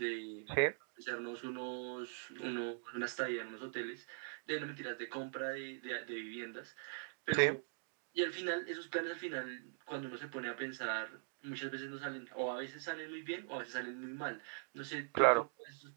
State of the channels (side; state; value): left; silent; digital silence